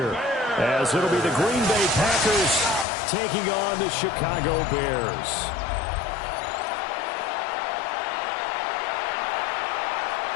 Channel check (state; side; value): drops out; right; at 2.9 s